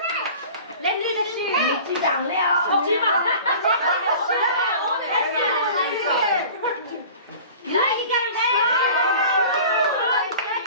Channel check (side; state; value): both; inverted; correlation -0.42